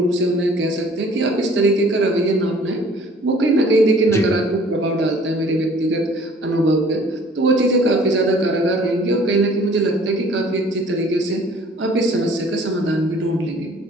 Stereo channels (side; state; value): both; normal; correlation 0.53